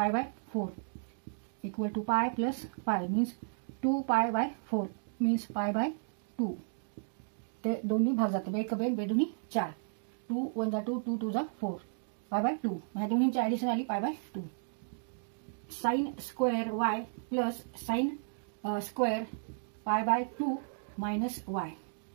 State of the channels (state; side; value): silent; left; digital silence